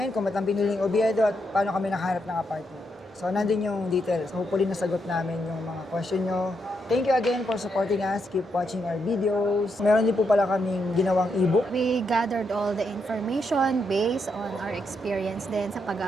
kung ba't ang piniling Oviedo at paano kami nakahanap ng apartment. So, nandun yung details. Hopefully, nasagot namin yung mga question nyo. Thank you again for supporting us. Keep watching our videos. Meron din po pala kaming ginawang ebook. We gathered all the information based on our experience din sa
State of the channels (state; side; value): normal; both; correlation 0.80